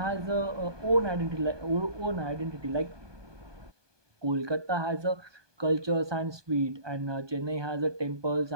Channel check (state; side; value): late; left; 1.2 ms